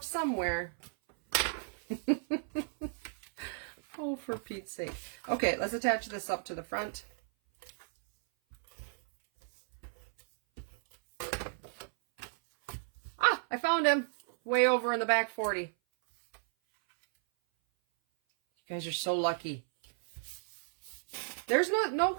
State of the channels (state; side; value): silent; left; 55 dB below the other